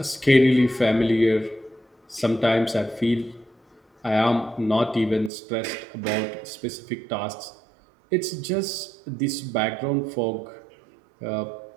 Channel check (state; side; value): drops out; left; at 5.3 s